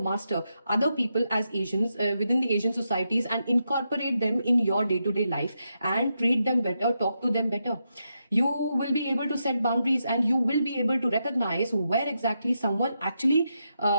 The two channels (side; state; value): both; inverted; correlation -0.84